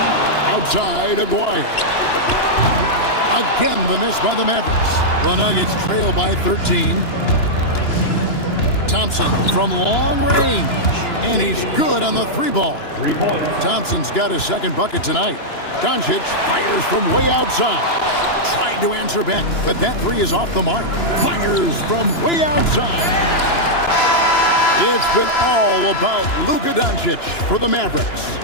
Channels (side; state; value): right; late; 2.9 ms